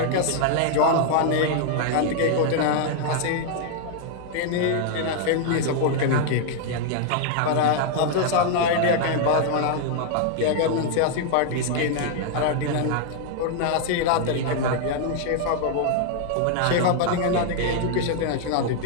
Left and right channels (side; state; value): both; different; correlation -0.01